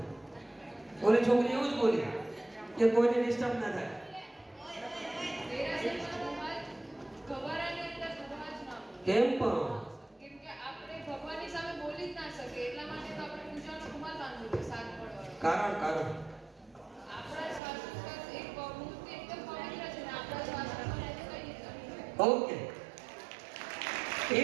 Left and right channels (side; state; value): left; drops out; at 17.6 s